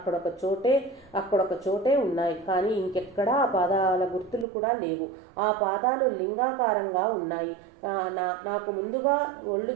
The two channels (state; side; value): drops out; left; at 4.5 s